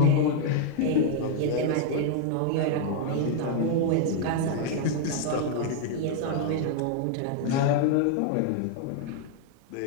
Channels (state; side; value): different; both; correlation 0.00